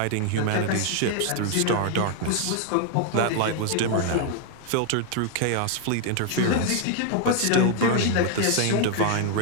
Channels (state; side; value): different; both; correlation 0.00